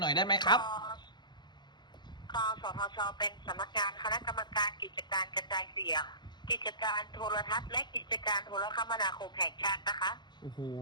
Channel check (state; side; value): late; right; 0.21 ms